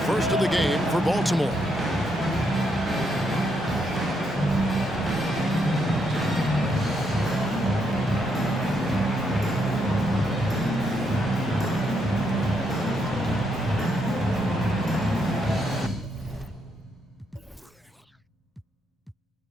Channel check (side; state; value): both; normal; correlation 0.77